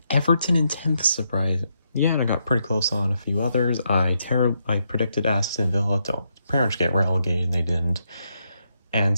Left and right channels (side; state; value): both; inverted; correlation -0.80